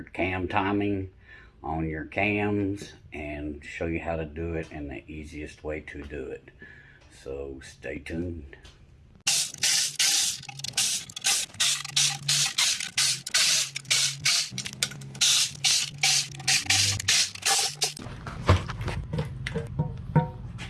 cam timing on your cams, and show you how to do it and the easiest way to do it. So stay tuned.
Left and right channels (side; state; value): both; identical; correlation 1.00